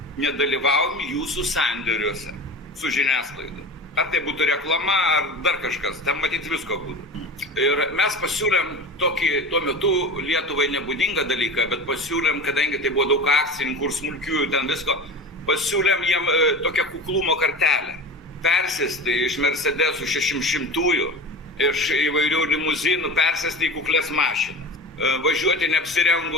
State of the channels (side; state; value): both; normal; correlation 0.31